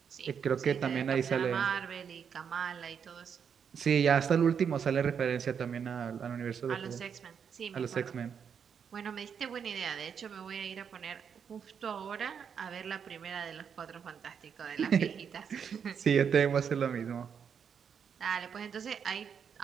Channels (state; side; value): quieter; left; 7.2 dB